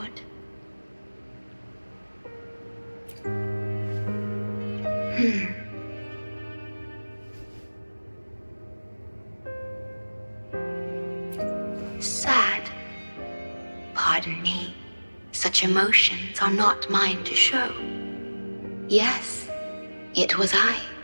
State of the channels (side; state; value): both; inverted; correlation -1.00